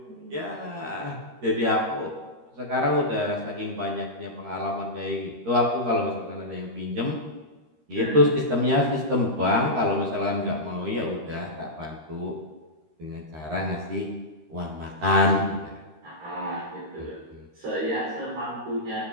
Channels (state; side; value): late; left; 13 ms